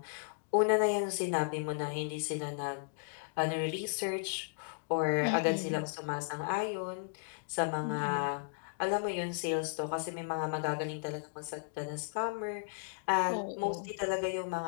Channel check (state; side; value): silent; right; digital silence